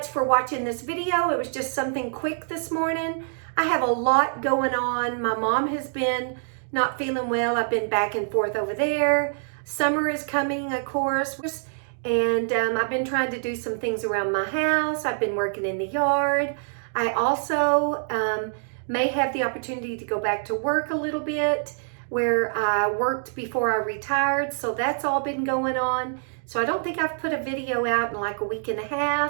for watching this video. It was just something quick this morning. I have a lot going on. My mom has been not feeling well. I've been back and forth over there. Summer is coming, of course. And I've been trying to do some things around my house. I've been working in the yard. I also may have the opportunity to go back to work a little bit where I worked before I retired. So that's all been going on. So I don't think I've put a video out in like a week and a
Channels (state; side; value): silent; left; digital silence